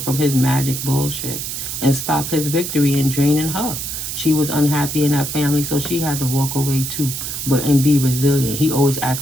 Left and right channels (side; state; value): right; noise; hiss, 5 dB below the sound